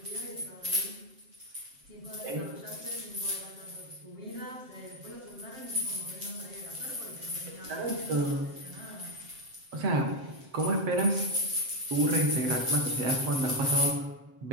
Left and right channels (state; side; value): late; left; 7.6 ms